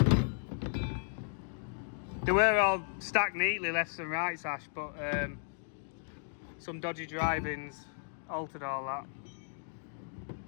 They were all stacked neatly left and right, Ash, but some dodgy drivings altered all that.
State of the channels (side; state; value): right; silent; 55 dB below the other